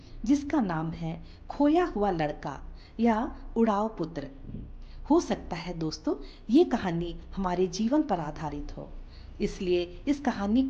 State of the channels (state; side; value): identical; both; correlation 1.00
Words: जिसका नाम है खोया हुआ लड़का या उड़ाव पुत्र। हो सकता है दोस्तों ये कहानी हमारे जीवन पर आधारित हो, इसलिए इस कहानी